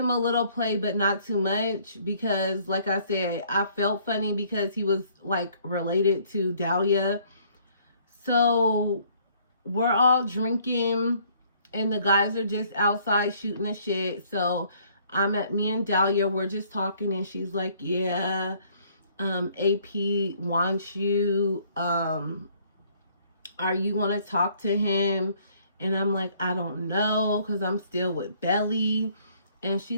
a little play, but not too much, because like I said, I felt funny because he was like related to Dahlia. So we're all drinking and the guys are just outside shooting the shit. So me and Dahlia, we're just talking, and she's like, yeah, AP wants you, are you going to talk to him? And I'm like, I don't know, because I'm still with Belly. And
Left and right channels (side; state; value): both; inverted; correlation -0.62